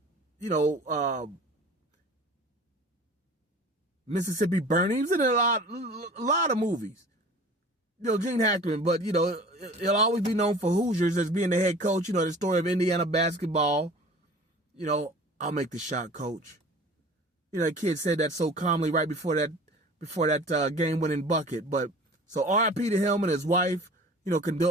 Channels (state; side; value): normal; both; correlation 0.43